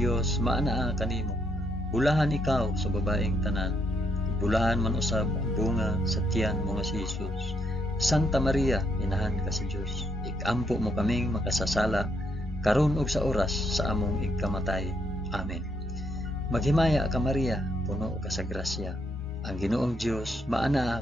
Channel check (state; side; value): normal; both; correlation 0.75